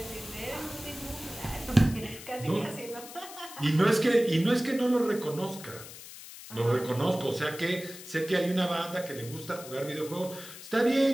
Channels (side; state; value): left; noise; hiss, 14 dB below the sound